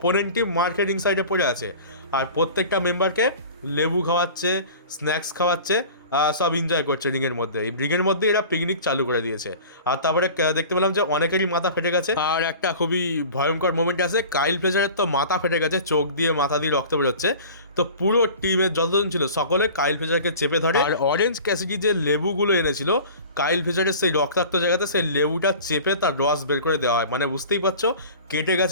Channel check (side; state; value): both; inverted; correlation -0.40